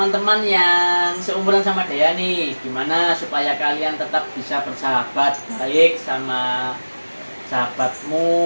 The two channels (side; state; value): both; inverted; correlation -1.00